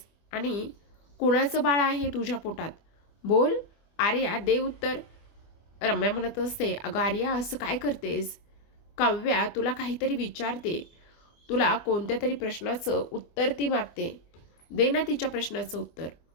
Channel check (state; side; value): late; right; 25 ms